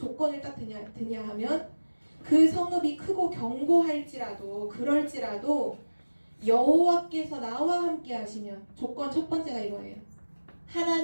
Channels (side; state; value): both; inverted; correlation -1.00